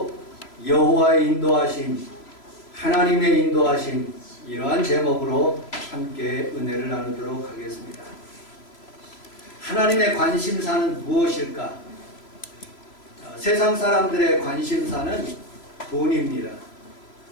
여호와의 인도하심, 하나님의 인도하심, 이러한 제목으로 함께 은혜를 나누도록 하겠습니다. 하나님의 관심사는 무엇일까? 세상 사람들의 관심사는 돈입니다.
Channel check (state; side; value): late; right; 3.0 ms